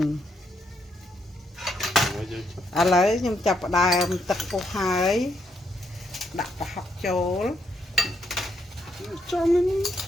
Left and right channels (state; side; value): normal; both; correlation 0.76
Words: ឥឡូវខ្ញុំចាប់ផ្ដើមទឹកពុះហើយដាក់ប្រហុកចូល